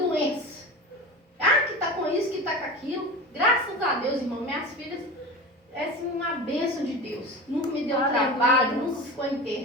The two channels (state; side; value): normal; both; correlation 0.30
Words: Ah, que tá com isso, que tá com aquilo. Graças a Deus, irmão, minhas filhas, é assim, uma bênção de Deus. Nunca me deu trabalho, nunca ficou